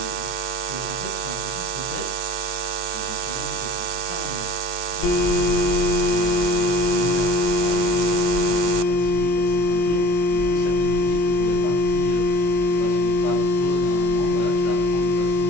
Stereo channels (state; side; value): late; right; 23 ms